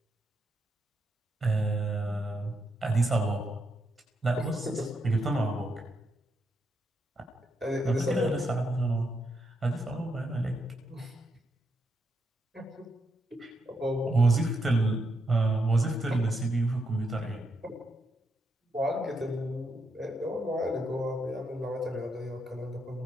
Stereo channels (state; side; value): normal; both; correlation 0.80